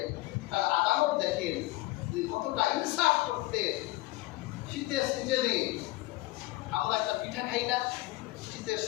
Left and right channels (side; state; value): right; quieter; 19.0 dB